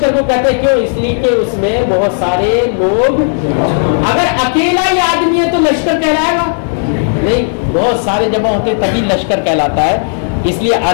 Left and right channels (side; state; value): right; silent; digital silence